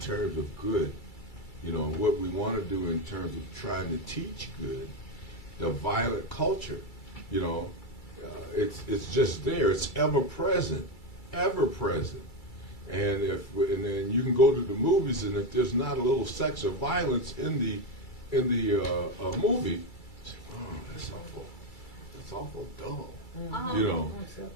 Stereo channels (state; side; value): late; right; 2.3 ms